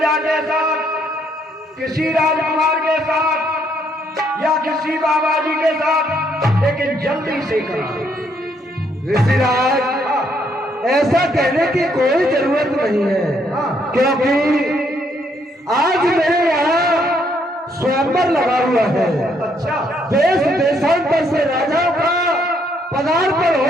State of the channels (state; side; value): normal; both; correlation 0.71